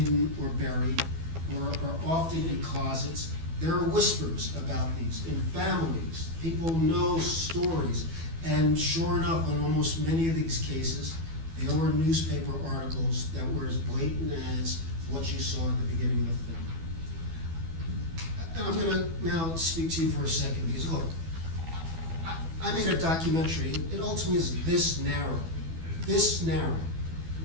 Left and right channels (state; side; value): late; left; 12 ms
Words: or buried, or often in closets, there are whispers about these in families. People know stories. And sure enough, in almost many of these cases, there were newspaper articles that were as blatant as what you saw at the beginning of the film. And I'm going to now speak to you for a second, because look, I made a documentary. It ultimately is this narrow.